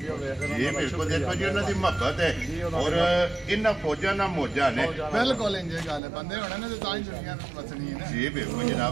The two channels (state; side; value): drops out; left; at 6.0 s